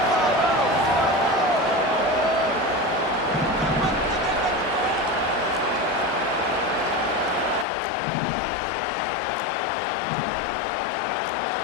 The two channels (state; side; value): drops out; right; at 7.7 s